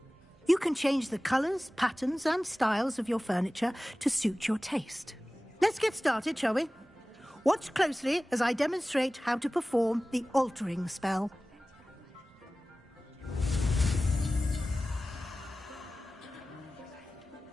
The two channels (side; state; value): both; normal; correlation 0.97